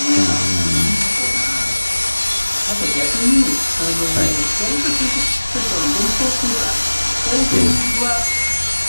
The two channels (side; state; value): both; inverted; correlation -1.00